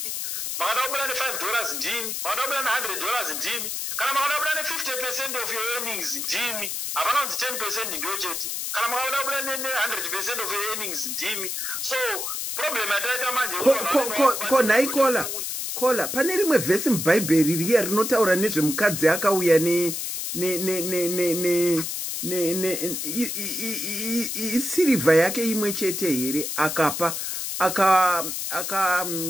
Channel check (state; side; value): noise; left; hiss, 3 dB below the sound